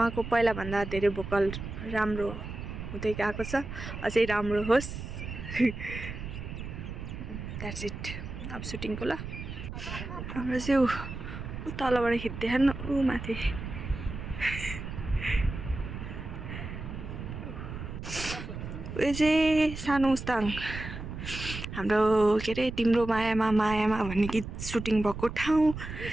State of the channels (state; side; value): noise; right; rumble, 8 dB below the sound